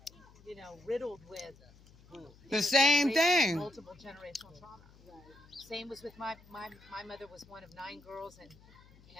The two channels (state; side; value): noise; left; hum, 24 dB below the sound